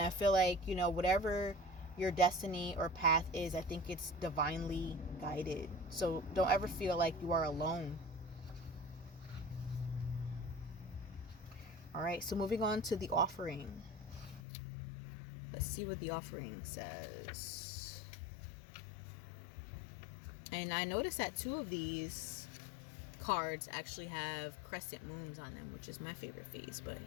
I feel like, whatever your destiny or path is, I think it's divinely guided. So don't ever feel like you are alone. All right, so moving on to the offering. Let's see what the offering says. And I noticed that 2 of these cards actually have crescent moons on them, which is my favorite phase. But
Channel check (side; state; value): right; drops out; at 14.4 s